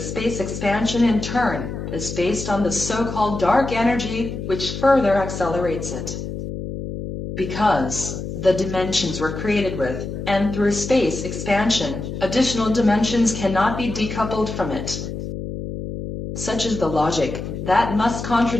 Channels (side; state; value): left; noise; hum, 7 dB below the sound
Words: expansion in turn is based on the so-called dark energy which further accelerates it. Because the dimensions were created with, and through space expansion, additional dimensions cannot be decoupled from it. Such is the logic that must